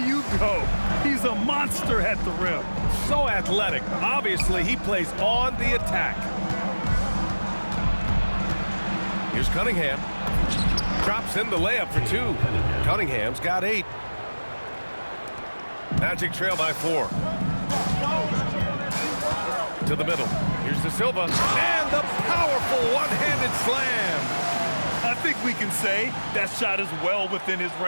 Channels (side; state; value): both; inverted; correlation -1.00